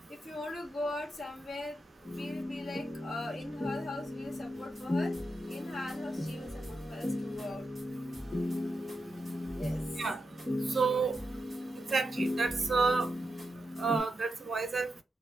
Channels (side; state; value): both; normal; correlation 0.87